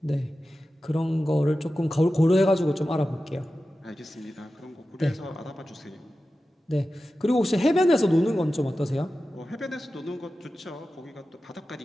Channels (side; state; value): both; normal; correlation 0.94